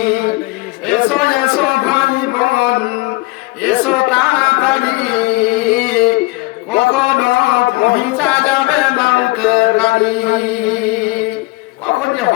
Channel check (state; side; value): quieter; right; 22.6 dB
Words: এসো এসো ভাই বোন এসো তাড়াতাড়ি, কখনো পৌঁছা যাবে মৌতের গাড়ি। কখন যে